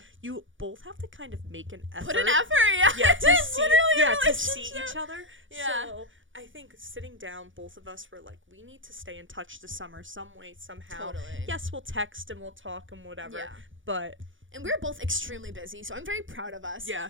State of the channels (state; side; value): late; left; 0.56 ms